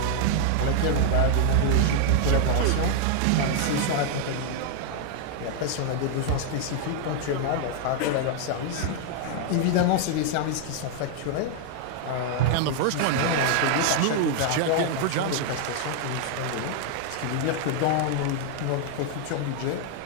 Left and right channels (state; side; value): different; both; correlation 0.00